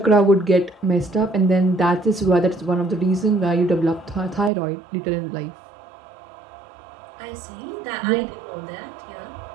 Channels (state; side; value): drops out; left; at 4.5 s